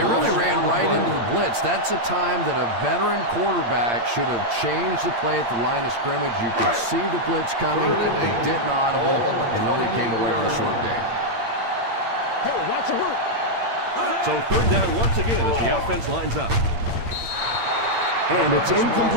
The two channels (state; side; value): late; left; 8.7 ms